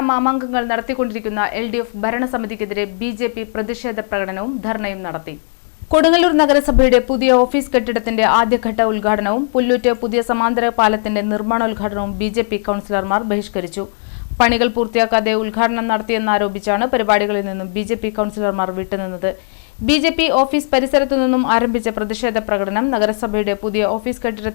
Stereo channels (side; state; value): right; silent; 68 dB below the other